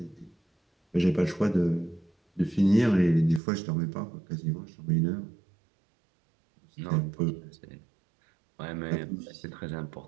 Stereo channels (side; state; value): left; drops out; at 3.4 s